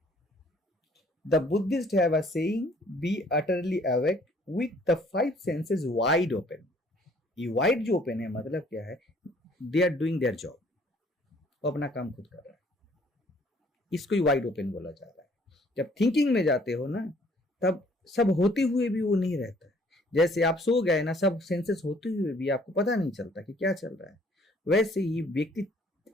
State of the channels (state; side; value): normal; both; correlation 0.60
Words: the Buddhist have a saying, be utterly awake with the 5 senses wide open. ये वाइड जो ओपन है मतलब क्या है, they are doing their job, वो अपना काम खुद कर रहा है, इसको ही वाइड ओपन बोला जा रहा है। जब थिंकिंग में जाते हो ना, तब सब होते हुए भी वो नहीं रहता है। जैसे आप सो गए ना, सब सेंसेस होते हुए भी आपको पता नहीं चलता कि क्या चल रहा है, वैसे ही व्यक्ति